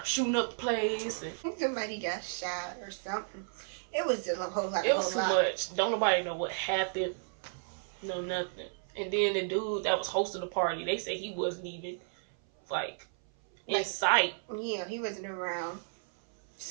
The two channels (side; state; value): left; silent; 56 dB below the other